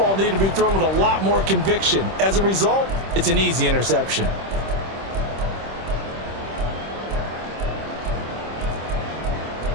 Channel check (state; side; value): late; left; 26 ms